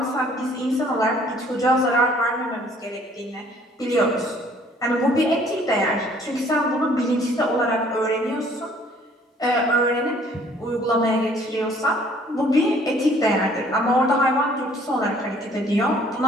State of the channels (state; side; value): normal; both; correlation 0.58